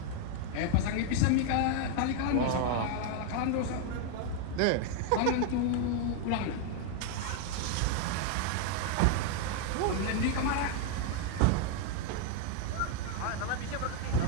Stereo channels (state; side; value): different; both; correlation 0.01